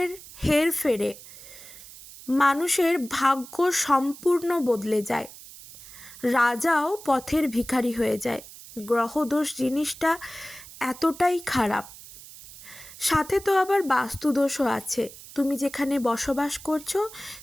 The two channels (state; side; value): noise; right; hiss, 17 dB below the sound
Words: হেরফেরে মানুষের ভাগ্য সম্পূর্ণ বদলে যায়, রাজাও পথের ভিখারি হয়ে যায়। গ্রহদোষ জিনিসটা এতটাই খারাপ। সাথে তো আবার বাস্তুদোষও আছে। তুমি যেখানে বসবাস করছো